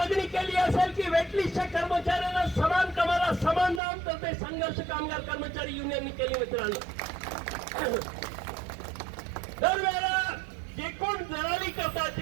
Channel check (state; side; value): drops out; left; at 3.8 s